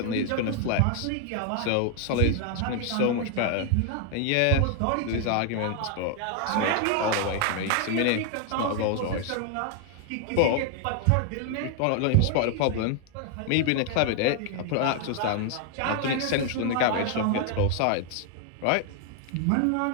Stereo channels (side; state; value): both; different; correlation 0.00